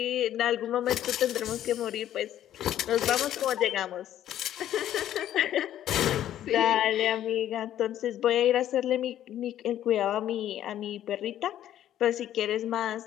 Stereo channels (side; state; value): right; quieter; 11.7 dB